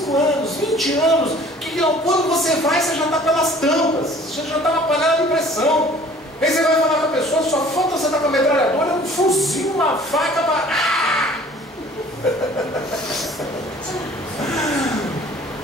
anos, 20 anos, que quando você vai, você já está pelas tampas, você já está na panela de pressão. Aí você vai falar com a pessoa, só falta você estar com a metralhadora, um fuzil, uma faca para...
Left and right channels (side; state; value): both; normal; correlation 0.51